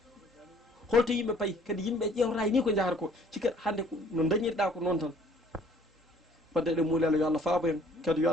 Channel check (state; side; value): normal; both; correlation 0.57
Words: holto yimɓe payi kadi yimɓe ƴewrata ni ko jahata ko cikka hannde no dañirɗa ko noon tan wadde eɗen muulelo yo Allah faabo en kadi yo